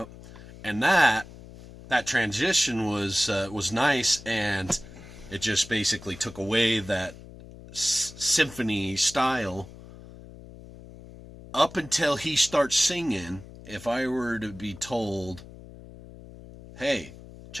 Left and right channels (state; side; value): noise; left; hum, 17 dB below the sound